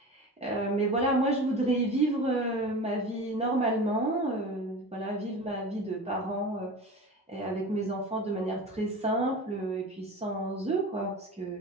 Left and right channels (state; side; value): normal; both; correlation 0.33